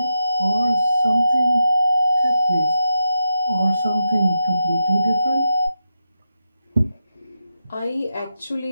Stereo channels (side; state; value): both; inverted; correlation -0.87